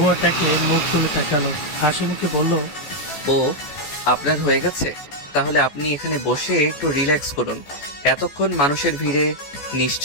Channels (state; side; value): late; right; 14 ms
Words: তাকালো, হাসি মুখে বলল, ও আপনার হয়ে গেছে, তাহলে আপনি এখানে বসে একটু রিল্যাক্স করুন। এতক্ষণ মানুষের ভিড়ে